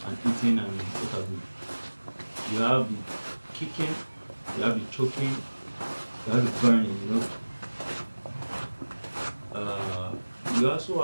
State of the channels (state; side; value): inverted; both; correlation -1.00